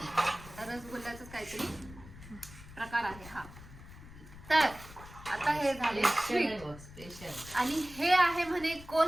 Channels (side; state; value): left; noise; rumble, 17 dB below the sound